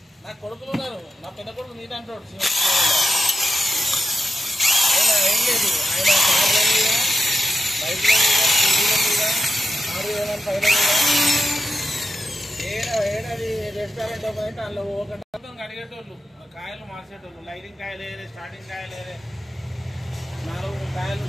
నా కొడుకులు ఉన్నారు, నా పెద్ద కొడుకు నీట్ అంటాడు. ఏం లేదు, ఆయన కార్ల మీద, బైక్ల మీద, స్కూటీల మీద, 6,000 పైన ఏడాది రెస్టారెంట్ ఓపెన్ అయితే అందులో ఒకటి అడిగేటోళ్ళు, కాయలు మార్చేటోళ్ళు. లైటింగ్ కాయలు వేరే, స్టార్టింగ్ కాయలు వేరే, 4 కాయలు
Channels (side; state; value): both; normal; correlation 0.89